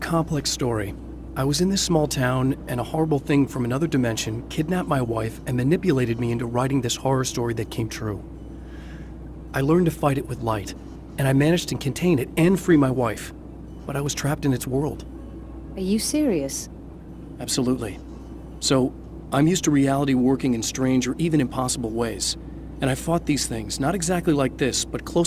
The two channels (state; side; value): identical; both; correlation 1.00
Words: story. I was in this small town, and a horrible thing from another dimension kidnapped my wife and manipulated me into writing this horror story that came true. I learned to fight it with light, and I managed to contain it and free my wife. But I was trapped in its world. Are you serious? Absolutely. So, I'm used to reality working in strange or even impossible ways. And I fought these things, not exactly like this, but